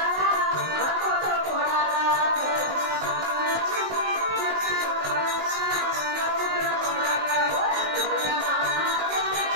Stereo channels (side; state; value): left; late; 19 ms